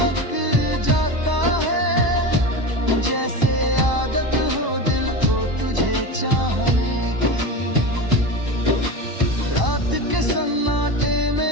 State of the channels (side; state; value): left; late; 1.0 ms